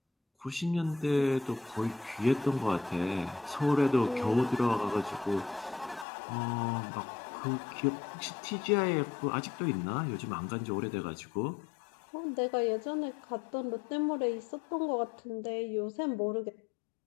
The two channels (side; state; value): right; drops out; at 6.1 s